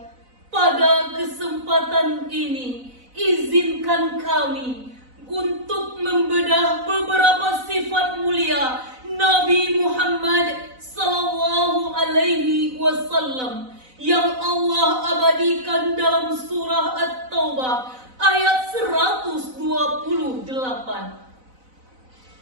Pada kesempatan ini, izinkan kami untuk membedah beberapa sifat mulia Nabi Muhammad sallallahu alaihi wasallam yang Allah abadikan dalam surah At-Taubah ayat 128.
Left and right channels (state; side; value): late; left; 4.0 ms